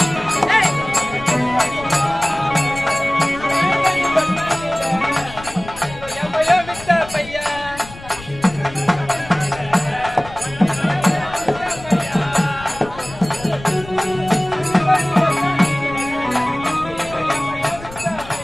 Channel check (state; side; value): noise; left; rumble, 16 dB below the sound